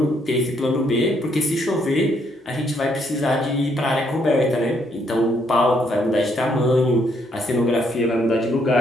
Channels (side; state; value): both; normal; correlation 0.72